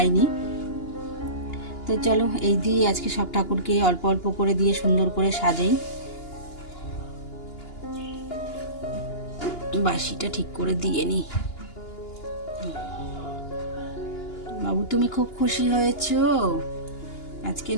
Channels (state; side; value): late; right; 2.8 ms